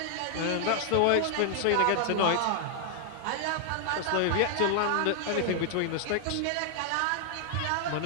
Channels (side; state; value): both; different; correlation 0.00